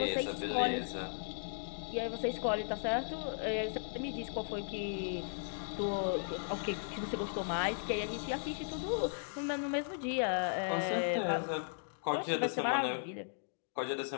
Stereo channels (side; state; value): right; silent; digital silence